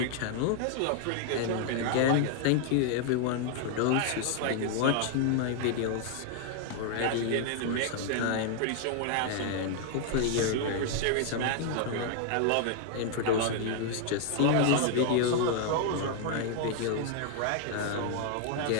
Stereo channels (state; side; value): different; both; correlation 0.00